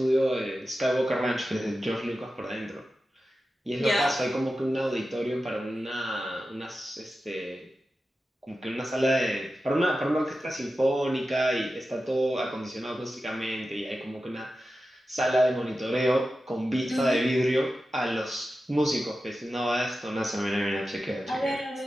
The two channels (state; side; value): normal; both; correlation 0.92